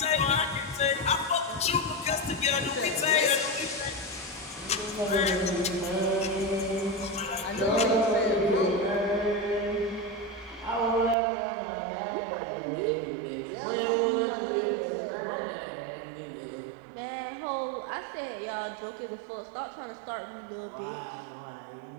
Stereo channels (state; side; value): drops out; left; at 11.2 s